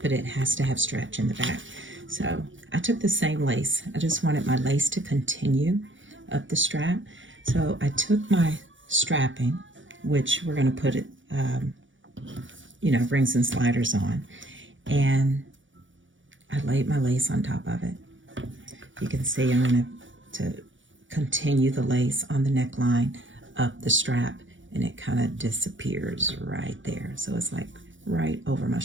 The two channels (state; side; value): late; left; 0.56 ms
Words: but it has to have stretch in the back. So I took the same lace. I just wanted my lace to continue up the strap. So I took my strapping, which we're going to put it, rings and sliders on, and I laid my lace on top of it. You can see I'm going to continue the lace on the neckline up the strap, and it kind of disappears right there. So it's like right over my